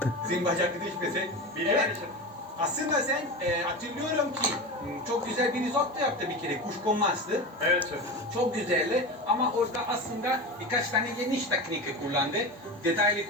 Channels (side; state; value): both; normal; correlation 0.25